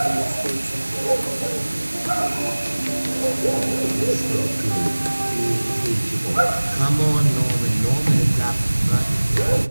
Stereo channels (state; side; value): inverted; both; correlation -1.00